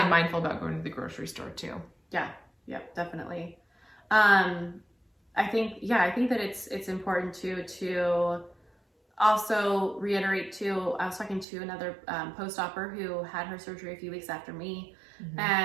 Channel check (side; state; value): left; drops out; at 11.5 s